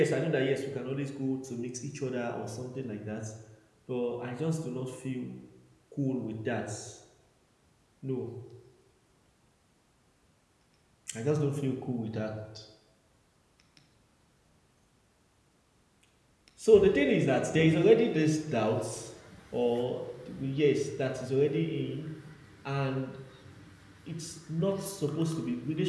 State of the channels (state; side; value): identical; both; correlation 1.00